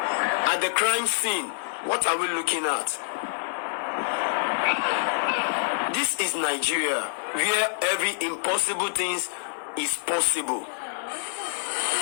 at the crime scene. What are we looking at? This is Nigeria, where every impossible thing is possible.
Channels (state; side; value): silent; right; digital silence